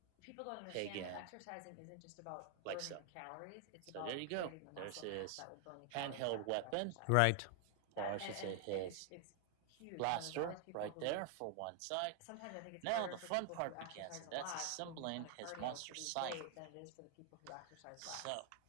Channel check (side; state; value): both; different; correlation 0.00